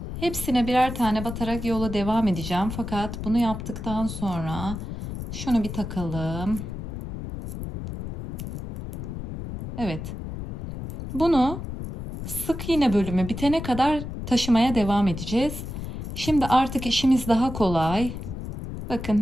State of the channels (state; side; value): noise; left; rumble, 7 dB below the sound